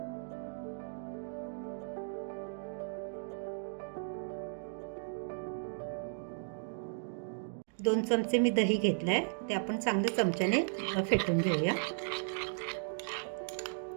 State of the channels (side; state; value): left; silent; digital silence